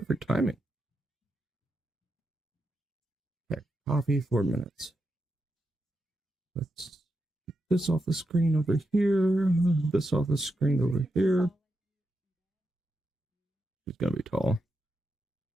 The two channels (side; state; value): both; normal; correlation 0.86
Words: timing. Okay, coffee, 4 minutes. Let's get this off the screen over here. This off the screen over here. She's gonna be tall.